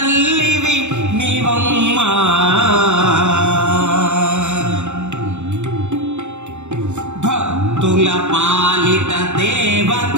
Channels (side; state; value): left; late; 0.83 ms